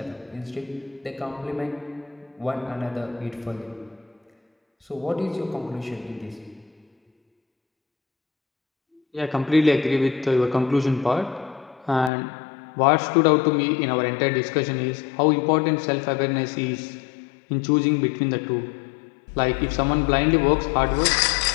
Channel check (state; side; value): drops out; right; at 12.1 s